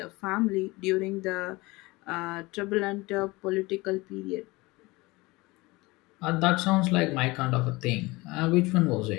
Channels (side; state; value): right; quieter; 22.6 dB